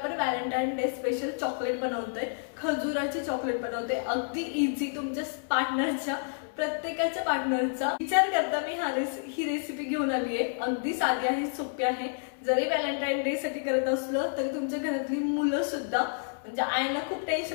व्हॅलेंटाईन डे स्पेशल चॉकलेट बनवतोय, खजुराचे चॉकलेट बनवतोय। अगदी इझी, तुमच्या पार्टनरच्या प्रत्येकाच्या पार्टनरचा विचार करता मी ही रेसिपी घेऊन आली आहे। अगदी साधी आहे, सोपी आहे। जरी व्हॅलेंटाईन डे साठी करत असलो तरी तुमच्या घरातली मुलं सुद्धा, म्हणजे आईला खूप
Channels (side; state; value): right; silent; 58 dB below the other